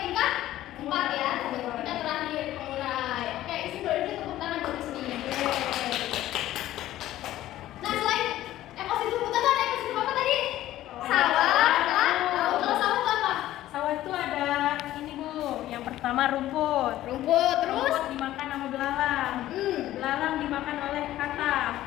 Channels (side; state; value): right; quieter; 14.2 dB